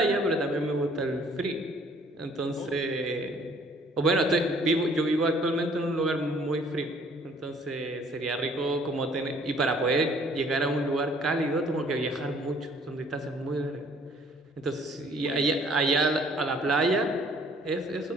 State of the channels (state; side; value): normal; both; correlation 0.58